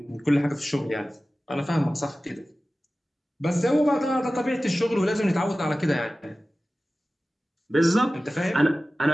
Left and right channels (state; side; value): normal; both; correlation 0.96